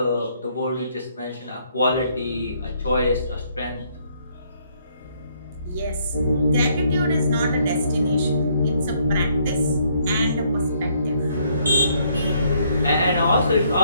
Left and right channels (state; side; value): inverted; both; correlation -0.69